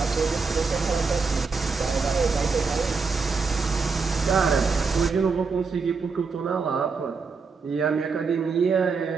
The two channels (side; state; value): left; quieter; 4.8 dB